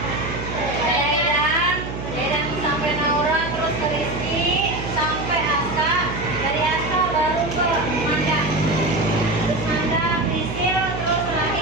Dedan sampai Naura, terus ke Rizky, sampai Aska, dari Aska baru ke Manda, terus Manda, Prisil, terus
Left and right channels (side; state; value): right; noise; hum, 7 dB below the sound